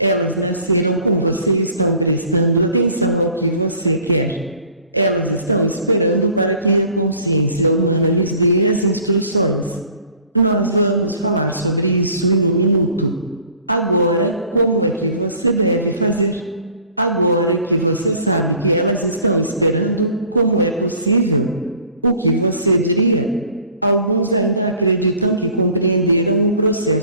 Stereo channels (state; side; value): inverted; both; correlation -0.52